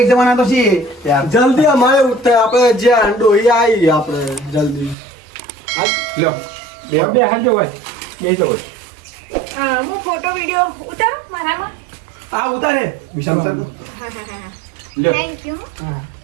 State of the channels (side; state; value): left; drops out; at 5.0 s